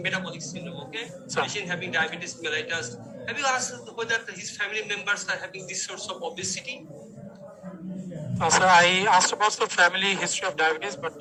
metabolic syndrome, okay? Sir. Patient having diabetes mellitus. Have you asked whether his family members are having this source of obesity? Sir, I asked about the family history of diabetes, but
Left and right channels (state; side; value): identical; both; correlation 1.00